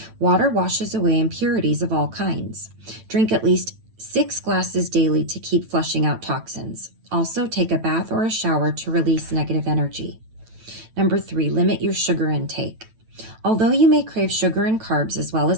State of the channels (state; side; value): late; left; 9.1 ms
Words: Water washes away impurities of all kinds. Drink at least 6 glasses daily to keep flushing out toxins. Also, take a bath or a shower to release negative energy. Number 3, limit your sugar intake. Although you may crave sugar and carbs as well